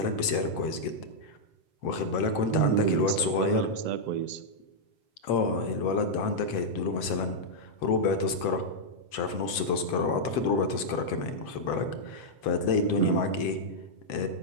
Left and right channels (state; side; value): late; right; 7.7 ms